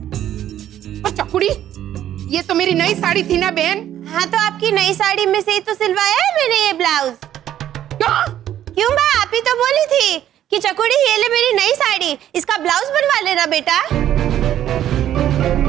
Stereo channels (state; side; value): quieter; left; 11.5 dB